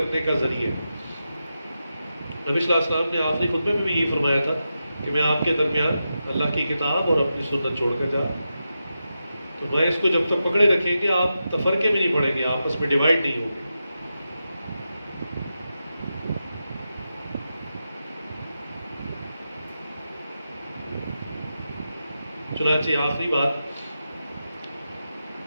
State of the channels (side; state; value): both; inverted; correlation -0.89